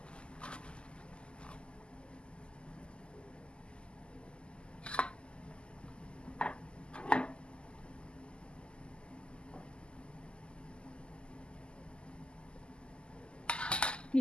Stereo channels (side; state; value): right; late; 0.051 ms